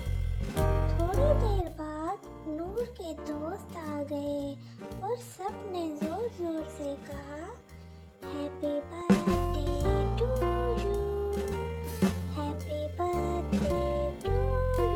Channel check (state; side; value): identical; both; correlation 1.00